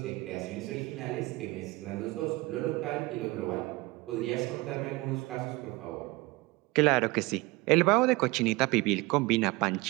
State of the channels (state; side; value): quieter; left; 22.4 dB